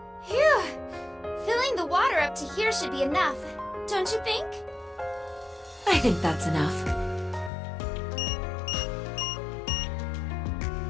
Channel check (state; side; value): drops out; right; at 7.5 s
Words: Phew! Filling the water up to here should be enough, don't you think? I think that's enough.